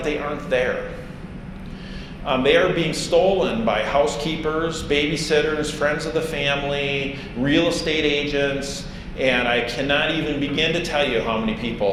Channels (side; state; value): both; identical; correlation 1.00